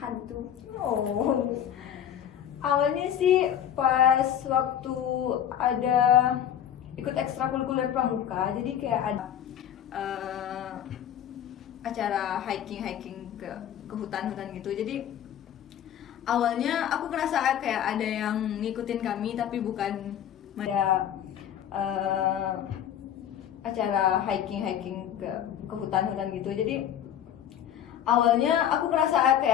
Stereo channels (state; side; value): quieter; right; 10.0 dB